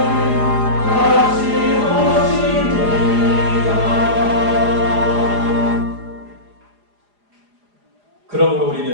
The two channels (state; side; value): late; left; 4.9 ms